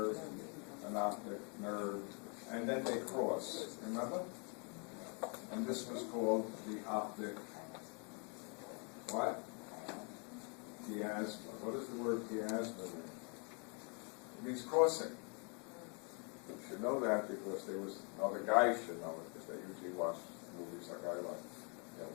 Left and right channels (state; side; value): quieter; right; 36.8 dB